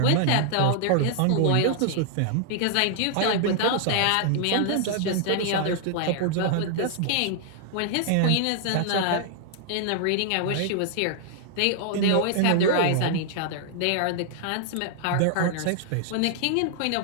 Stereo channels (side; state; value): both; different; correlation -0.01